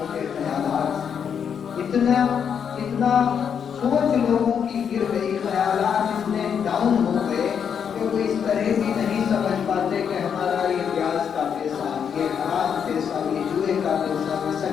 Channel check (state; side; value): quieter; right; 7.5 dB